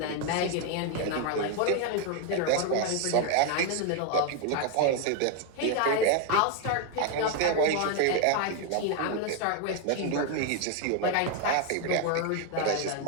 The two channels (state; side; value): different; both; correlation 0.01